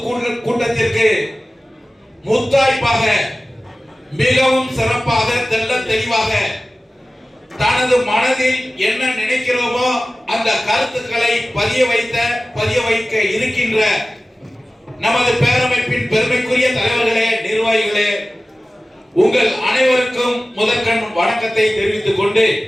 கூட்டத்திற்கு முத்தாய்ப்பாக மிகவும் சிறப்பாக தெல்ல தெளிவாக தனது மனதில் என்ன நினைக்கிறோமோ அந்த கருத்துக்களை பதிய வைக்க இருக்கின்ற நமது பேரமைப்பின் பெருமைக்குரிய தலைவர்களே, நிர்வாகிகளே, உங்கள் அனைவருக்கும் முதற்கண் வணக்கத்தை தெரிவித்துக் கொண்டு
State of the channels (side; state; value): both; normal; correlation 0.96